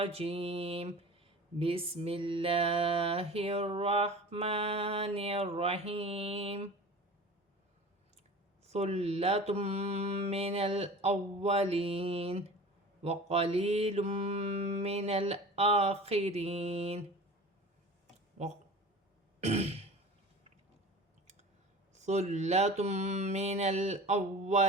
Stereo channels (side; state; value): both; normal; correlation 0.38